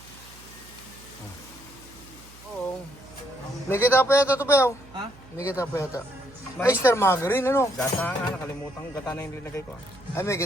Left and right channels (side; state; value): right; noise; hum, 21 dB below the sound